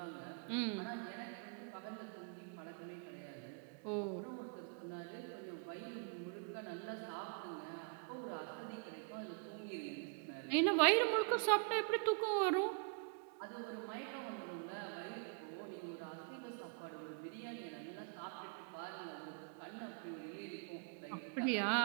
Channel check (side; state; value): left; quieter; 39.4 dB